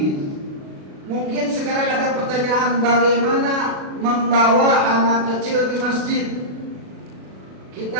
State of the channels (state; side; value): late; left; 36 ms